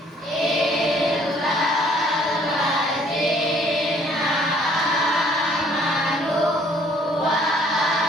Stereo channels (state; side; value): normal; both; correlation 0.60